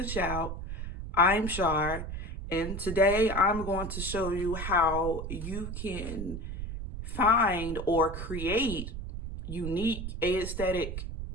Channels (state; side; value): noise; right; rumble, 6 dB below the sound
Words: Shout. I'm Shar, and today I'm going to show you how you can find or create unique aesthetic